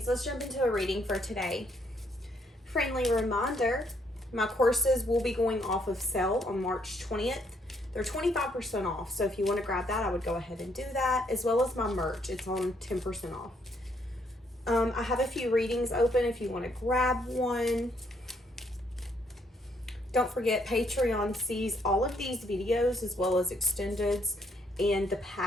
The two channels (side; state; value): both; normal; correlation 0.71